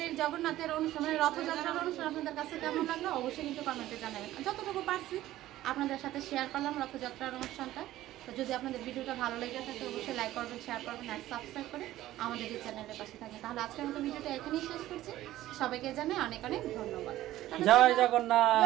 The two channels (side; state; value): left; quieter; 14.8 dB